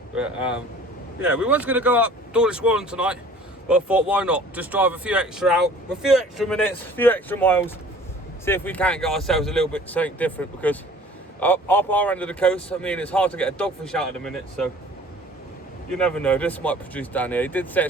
But yeah, we was going to go up Dawlish Warren tonight, but I thought why not? Just drive a few extra out, a few extra minutes, a few extra miles. See if we can't get ourselves a little bit something different, because up our end of the coast, I mean, it's hard to get a dogfish out at the minute, so you never know, this might produce down here. He did say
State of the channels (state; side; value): normal; both; correlation 0.49